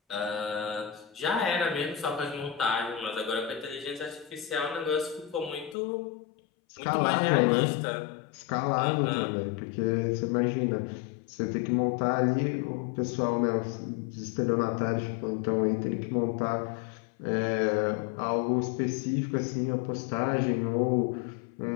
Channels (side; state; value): right; drops out; at 5.8 s